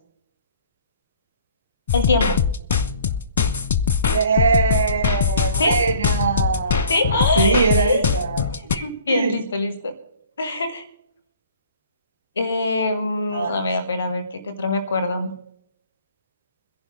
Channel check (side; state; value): both; inverted; correlation -0.51